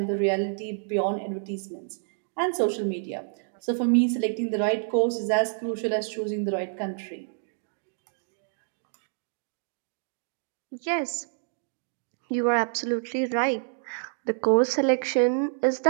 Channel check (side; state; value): left; silent; digital silence